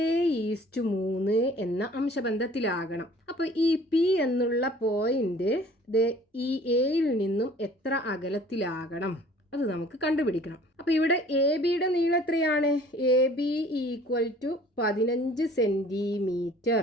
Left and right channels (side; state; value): both; normal; correlation 0.51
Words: എന്ന അംശബന്ധത്തിലാകണം. അപ്പോൾ ഈ പി എന്നുള്ള പോയിന്റ് ഈ എയിൽ നിന്നും എത്ര അകലത്തിലാകണം? അത് നമുക്ക് കണ്ടുപിടിക്കണം. അപ്പോൾ ഇവിടെ എ ബിയുടെ നീളം എത്രയാണ്? A B equal to 15 centimetre.